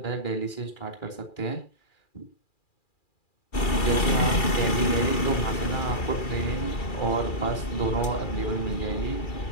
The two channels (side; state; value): right; late; 2.4 ms